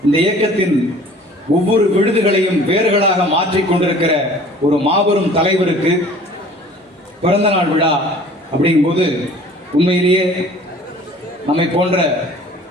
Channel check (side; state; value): both; normal; correlation 0.49